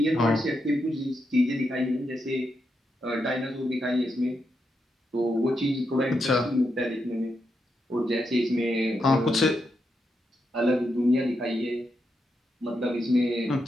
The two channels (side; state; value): both; normal; correlation 0.84